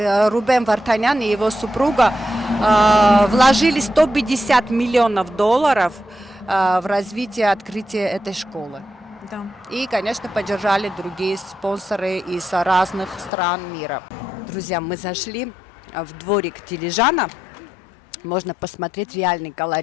Рубен Вартанян и его супруга вложили $150 миллионов в развитие открытия этой школы. Да. И, конечно, поддержали другие спонсоры из разных стран мира. Друзья, мы зашли в дворик Дилижана. Можно посмотреть реальный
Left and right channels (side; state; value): right; drops out; at 13.3 s